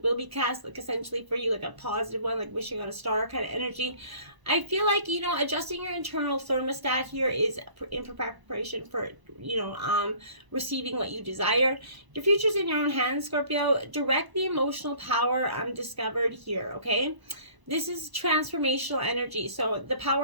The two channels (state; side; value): late; left; 1.0 ms